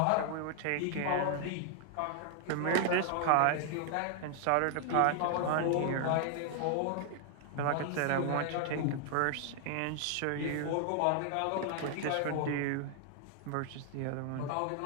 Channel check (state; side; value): different; both; correlation 0.00